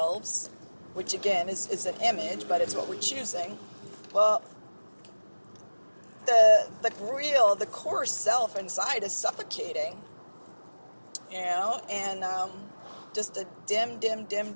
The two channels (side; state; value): both; inverted; correlation -1.00